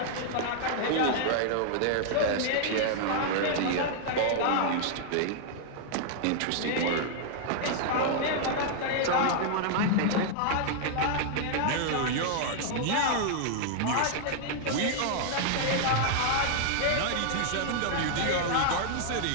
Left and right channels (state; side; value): different; both; correlation -0.01